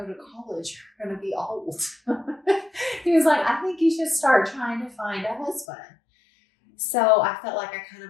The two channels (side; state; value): right; drops out; at 5.7 s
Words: to college, you're going to be old. He was like, I think you should start trying to find a husband. So I felt like I kind